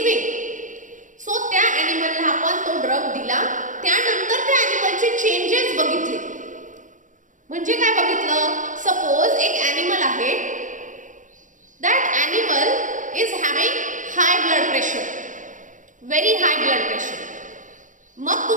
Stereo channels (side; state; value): left; late; 0.37 ms